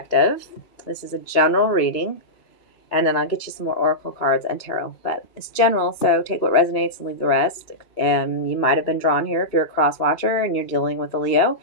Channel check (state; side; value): late; right; 2.4 ms